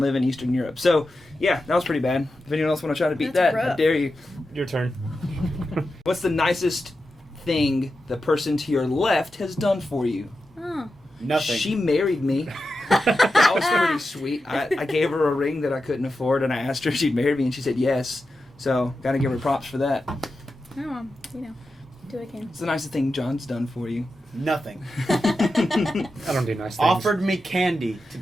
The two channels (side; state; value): both; normal; correlation 0.90